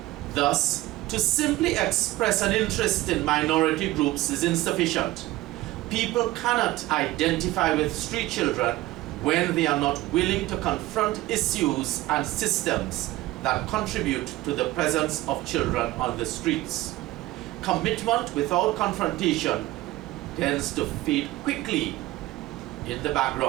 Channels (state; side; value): quieter; left; 17.3 dB